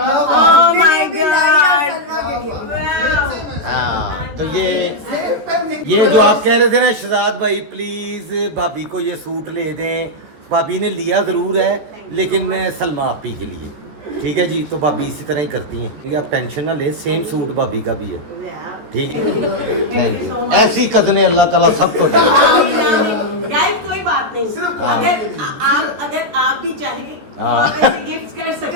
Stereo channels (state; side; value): late; left; 14 ms